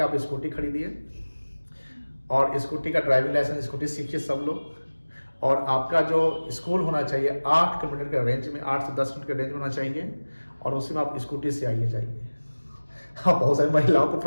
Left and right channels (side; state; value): both; inverted; correlation -1.00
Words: आप स्कूटी खरीदिए और स्कूटी का ड्राइविंग लाइसेंस, स्कूटी सीखिए सब लोग, और आपका जो स्कूल होना चाहिए 8 किलोमीटर के रेंज में, 8 से 10 किलोमीटर के रेंज में होना चाहिए, और उसी में आप स्कूटी से आइए जाइए. हाँ, बहुत सारी महिलाओं को